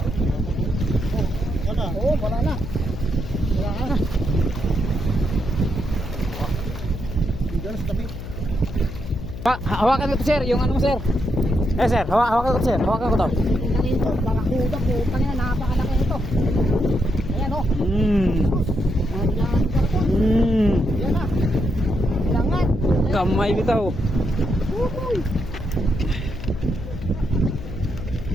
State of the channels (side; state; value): left; noise; hum, 10 dB below the sound